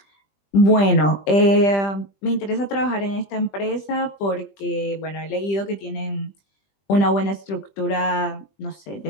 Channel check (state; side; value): late; right; 20 ms